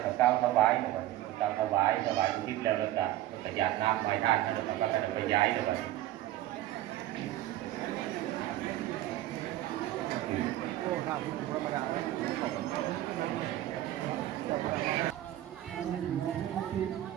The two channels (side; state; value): left; quieter; 14.6 dB